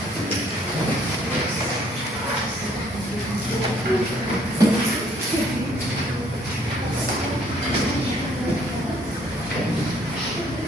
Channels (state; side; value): normal; both; correlation 0.63